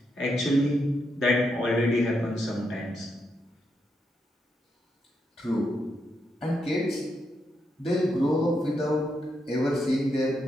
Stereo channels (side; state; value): both; normal; correlation 0.81